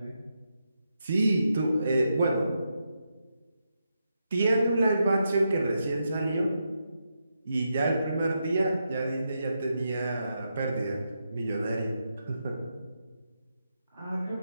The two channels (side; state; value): both; inverted; correlation -0.84